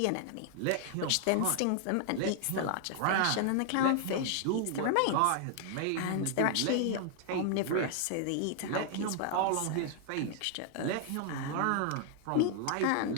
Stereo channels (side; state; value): both; different; correlation 0.00